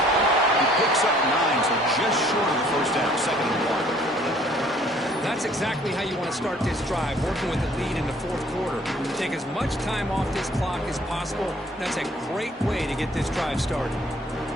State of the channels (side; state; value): both; normal; correlation 0.58